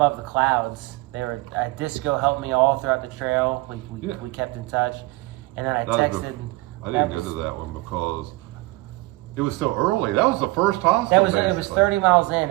the Clouds. They were Disco helped me all throughout the trail. We kept in touch, and then I texted. I didn't go to that one because it was so early. That was the first hostel. It was 30 miles in,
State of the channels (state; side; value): quieter; left; 21.7 dB